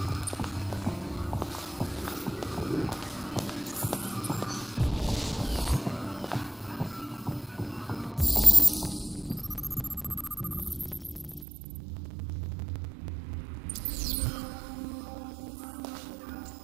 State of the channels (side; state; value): left; drops out; at 11.5 s